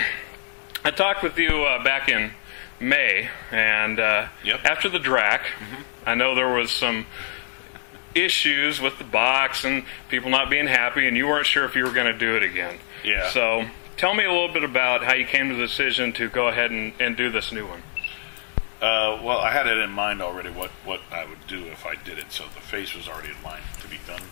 I talked with you back in May, and after the DRAC, I know there was some issues with the box and people not being happy, and you weren't sure if you were going to do it again. Yeah. So tell me a little bit about how you came to the decision to go ahead and do this new one. Well, I had it in mind already what I would do if I did it, so the face was already in mind to be done.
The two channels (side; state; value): right; silent; 62 dB below the other